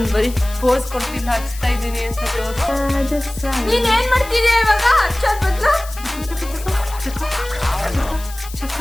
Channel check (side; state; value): left; noise; hiss, 16 dB below the sound